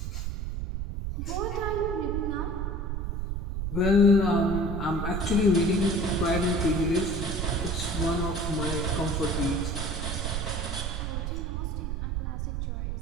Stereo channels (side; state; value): right; noise; rumble, 2 dB below the sound